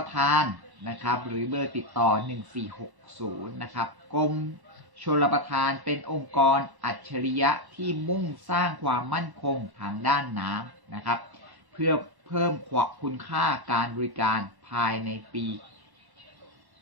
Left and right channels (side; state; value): left; late; 1.1 ms